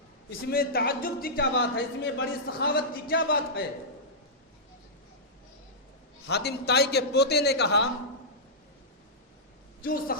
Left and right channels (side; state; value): both; normal; correlation -0.13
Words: اس میں تعجب کی کیا بات ہے، اس میں بڑی سخاوت کی کیا بات ہے؟ حاتم طائی کے پوتے نے کہا کیوں